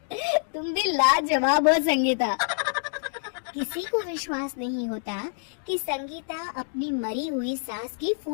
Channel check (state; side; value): silent; right; digital silence